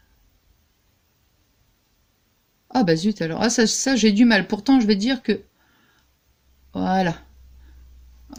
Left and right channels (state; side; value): identical; both; correlation 1.00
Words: Ah bah zut alors. Ah ça j'ai du mal. Pourtant je vais dire que... Voilà.